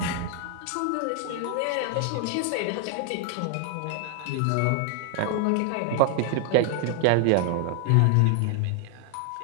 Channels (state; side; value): different; both; correlation 0.00